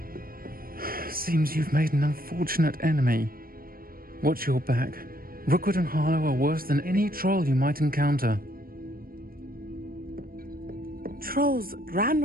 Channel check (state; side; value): late; left; 0.42 ms